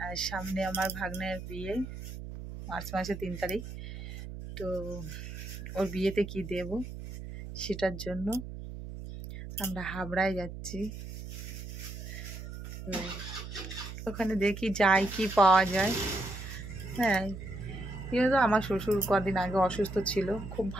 সামনে আমার ভাগ্নের বিয়ে, মার্চ মাসে 3 তারিখ। তো ওর বিয়েতে কি দেব সেটার জন্য আমরা হাবড়ায় যাচ্ছি। তো ওখানে দেখি যাই কি পাওয়া যায়। হ্যাঁ, কিন্তু আমার শ্বশুর কদিন আগে অসুস্থ ছিল, খুব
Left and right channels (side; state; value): right; noise; hum, 9 dB below the sound